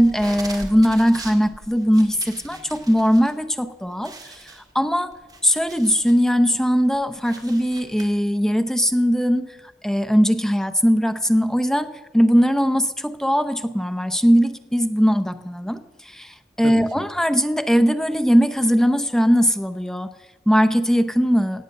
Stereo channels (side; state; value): both; normal; correlation 0.92